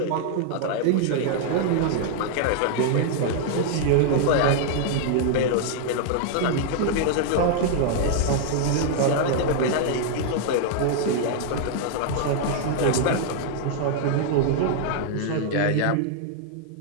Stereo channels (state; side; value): different; both; correlation -0.01